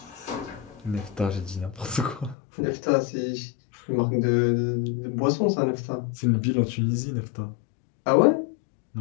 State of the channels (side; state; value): right; drops out; at 2.4 s